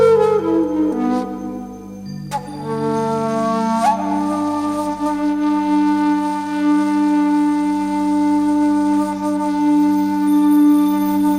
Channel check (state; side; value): identical; both; correlation 1.00